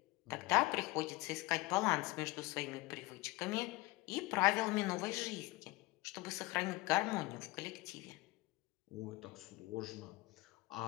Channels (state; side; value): quieter; right; 21.6 dB